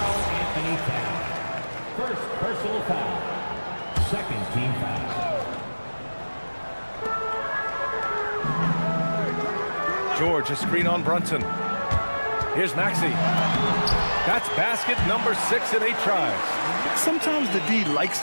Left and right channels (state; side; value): inverted; both; correlation -1.00